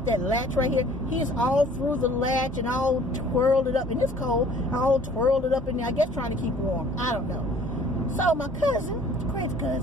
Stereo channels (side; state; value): both; normal; correlation 0.53